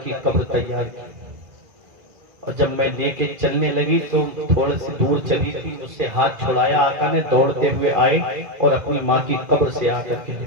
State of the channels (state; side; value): late; left; 2.4 ms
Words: کی قبر تیار کی، اور جب میں لے کے چلنے لگی تو تھوڑے سے دور چلی تھی، اس سے ہاتھ چھڑایا، آقا نے دوڑتے ہوئے آئے اور اپنی ماں کی قبر سے آ کر کے